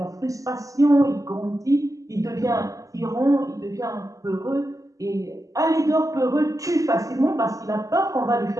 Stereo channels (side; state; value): left; late; 0.16 ms